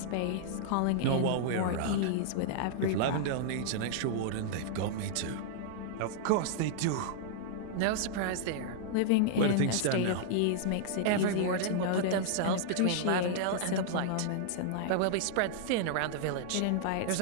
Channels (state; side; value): different; both; correlation -0.01